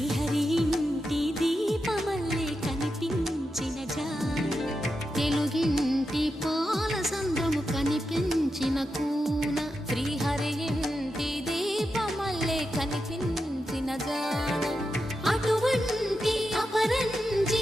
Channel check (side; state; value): both; normal; correlation 0.88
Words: ఇంటి దీపమల్లే కనిపించిన జాన. తెలుగింటి పాల సంద్రము కనిపించిన కూన శ్రీహరి ఇంటి దీపమల్లే కనిపించిన జాన. అటువంటి అపరంజి